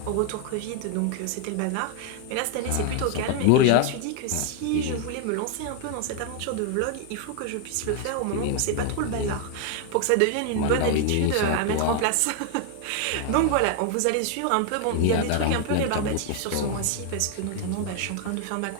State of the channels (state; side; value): different; both; correlation 0.00